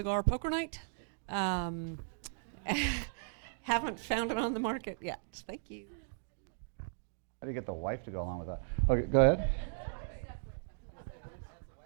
poker night. Haven't found it on the market yet. Thank you. How do you get the wife to go along with that? Okay, go ahead.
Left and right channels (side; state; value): left; silent; digital silence